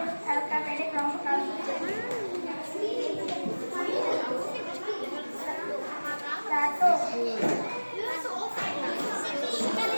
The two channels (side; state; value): both; inverted; correlation -1.00